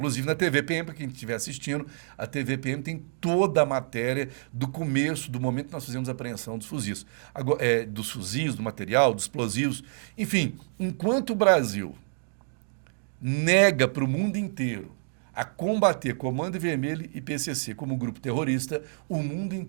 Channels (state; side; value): silent; left; digital silence